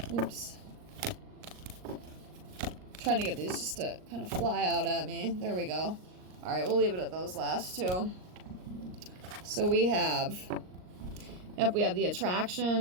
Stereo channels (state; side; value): late; left; 39 ms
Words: Oops. Trying to get these just to kind of fly out at me. There we go. Alright, we'll leave it at those last two. So we have, we have the